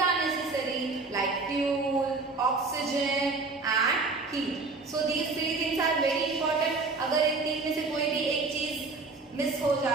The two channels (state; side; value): quieter; left; 3.9 dB